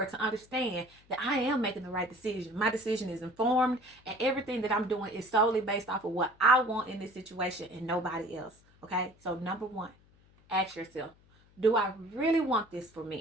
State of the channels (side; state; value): left; noise; hum, 29 dB below the sound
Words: to understand that I am making the right decision. My decision is informed, and everything that I'm doing is solely based off of what I want in this situation and nobody else. Okay? So number one, ask yourself, do I really want this for